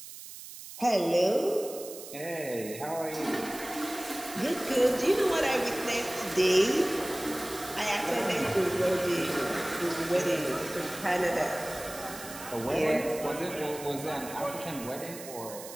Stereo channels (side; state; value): right; noise; hiss, 13 dB below the sound